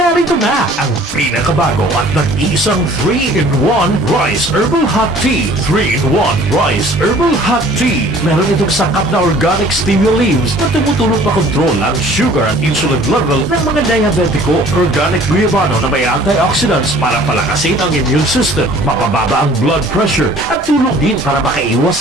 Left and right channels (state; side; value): normal; both; correlation 0.52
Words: na ang pinakabago at nag-iisang 3-in-1 Rice Herbal Hot Tea. 3-in-1 Rice Herbal Hot Tea. Meron itong sangkap na organic stevia leaves na tumutulong pakontrol ang sugar at insulin level ng mga diabetiko. Organic guayabano na may antioxidants para palakasin ang immune system, mapababa ang blood pressure, at tulong din para